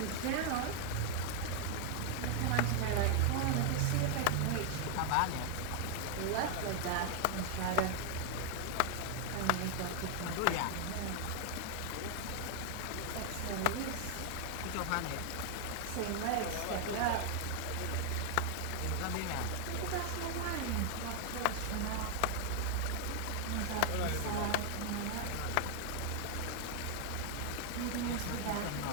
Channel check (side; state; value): both; different; correlation 0.00